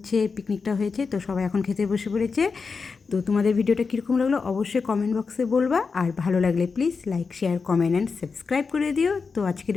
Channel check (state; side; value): quieter; right; 5.0 dB